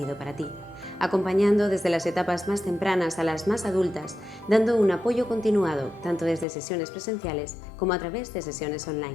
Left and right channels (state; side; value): drops out; right; at 6.5 s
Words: para ti, acompañando desde las etapas más tempranas a las más adultas, dando un apoyo continuado tanto desde sesiones presenciales como a través de sesiones